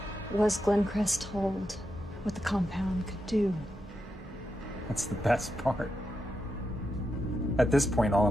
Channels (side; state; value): both; normal; correlation 0.86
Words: Was Glencrest told what the compound could do? That's the best part. At this point, all